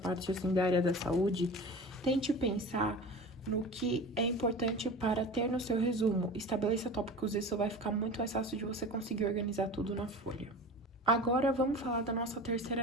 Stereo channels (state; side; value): normal; both; correlation 0.34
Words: assim, da área da saúde, tente pensar no que é importante para ter no seu resumo. Estabeleça tópicos, isso vai ficar muito mais fácil de você conseguir organizar tudo na folha. Agora, vamos falar da nossa